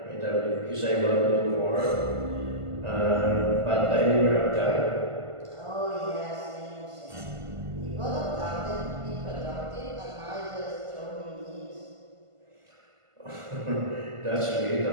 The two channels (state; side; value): late; left; 1.5 ms